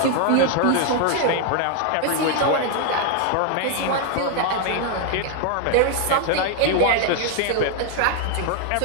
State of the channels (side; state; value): both; different; correlation 0.00